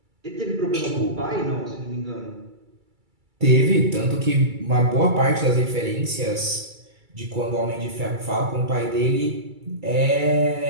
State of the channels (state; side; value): late; left; 2.3 ms